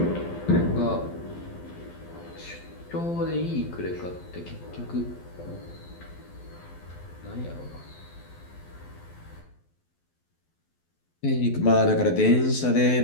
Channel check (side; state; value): right; late; 12 ms